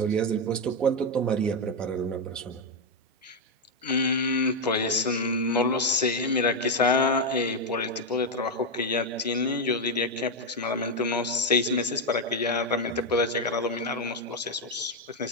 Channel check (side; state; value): both; normal; correlation 0.03